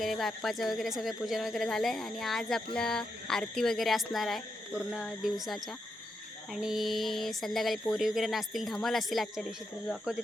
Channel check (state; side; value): normal; both; correlation 0.84